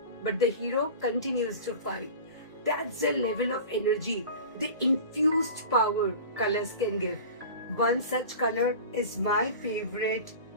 but the hero continues to fight. That's the level of energy, the infused power colors can give. One such color is my favorite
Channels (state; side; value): inverted; both; correlation -0.36